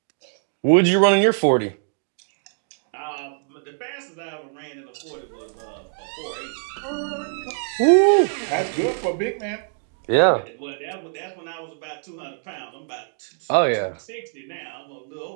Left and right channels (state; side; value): silent; left; digital silence